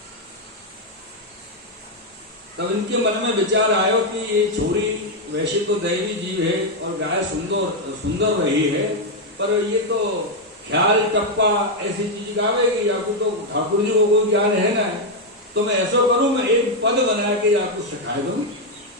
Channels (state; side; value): normal; both; correlation 0.02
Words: तब इनके मन में विचार आयो कि ये छोरी वैसे तो दैवी जीव है और गाय सुंदर रही है, पर ये तो ख्याल टप्पा ऐसी चीज गावेगी, आपको तो ठाकुर जी को कोई ज्ञान है ना, तो मैं ऐसा करूं, मैं एक पद बना के आपको सिखा दूं